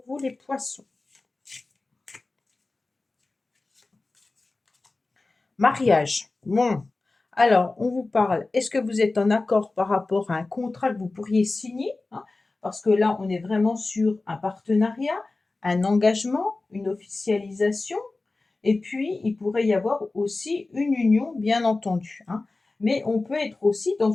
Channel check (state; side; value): quieter; right; 3.4 dB